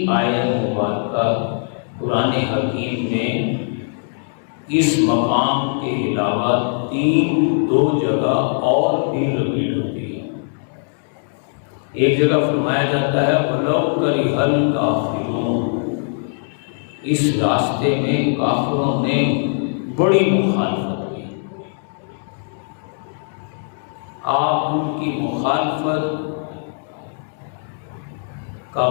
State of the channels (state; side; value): silent; right; digital silence